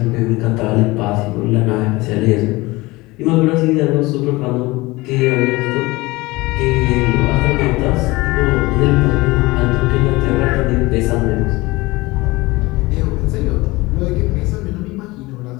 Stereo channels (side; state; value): right; quieter; 21.5 dB